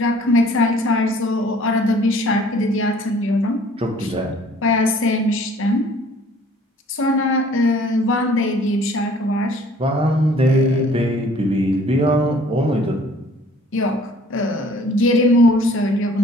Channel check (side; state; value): both; normal; correlation 0.54